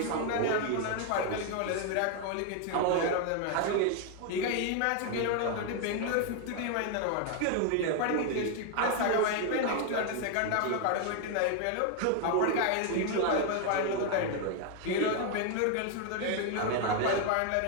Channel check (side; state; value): both; different; correlation 0.01